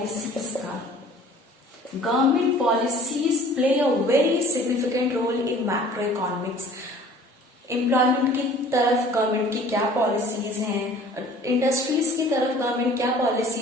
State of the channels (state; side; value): normal; both; correlation 0.49